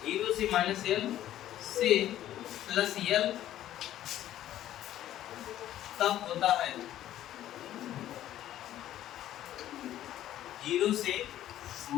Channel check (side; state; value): right; quieter; 12.6 dB